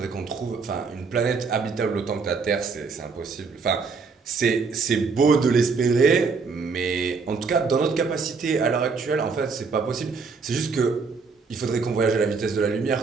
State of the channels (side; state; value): left; quieter; 4.8 dB